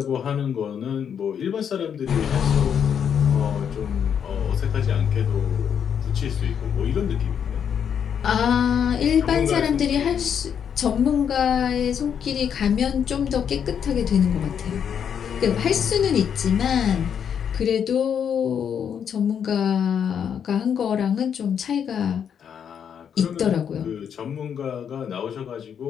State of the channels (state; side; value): quieter; right; 8.0 dB